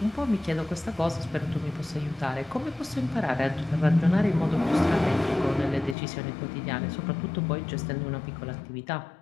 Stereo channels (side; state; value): right; drops out; at 6.0 s